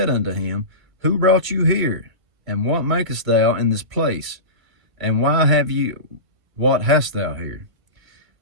unto him, Who brought you here? And what makest thou in this place? And what hast thou here?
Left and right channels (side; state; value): left; late; 1.3 ms